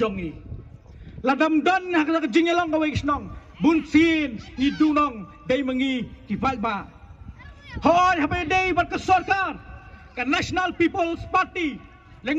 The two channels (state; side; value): identical; both; correlation 1.00